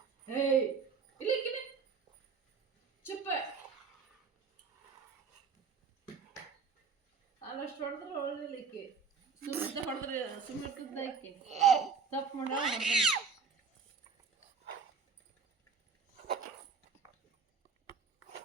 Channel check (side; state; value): left; quieter; 5.4 dB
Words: ಏಯ್ ಇಲ್ಲಿ ಚುಪ್ಪ ಅಲ್ಲಷ್ಟು ಹೊಡೆದ್ರೆ ಒಳ್ಳೆಲಿಕ್ಕೆ ಸುಮ್ಮನೆ ಹೊಡೆದ್ರೆ ಸುಮ್ಮನೆ ಆಕೆ ತಪ್ಪು ಮಾಡ